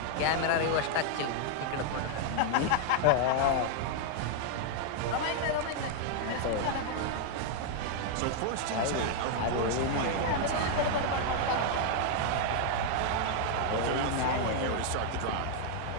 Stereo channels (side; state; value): both; different; correlation 0.00